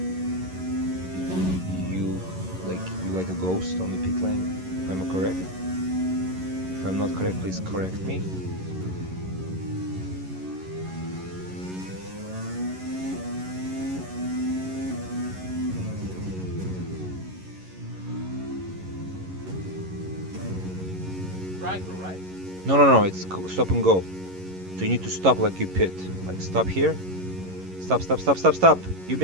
you like a ghost on the pit lane. If I'm correct. If I'm not correct, please correct me. Right through, right? No, it's stop and go. So you need to stop like you pit. Like stop here. Stop. You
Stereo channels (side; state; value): left; late; 11 ms